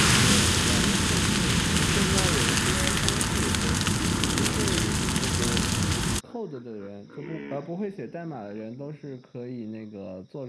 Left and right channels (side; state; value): both; identical; correlation 1.00